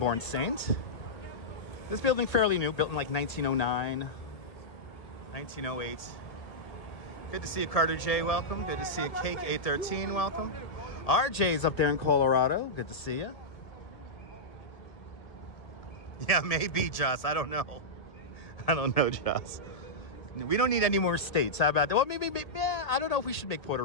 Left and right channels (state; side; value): late; right; 1.7 ms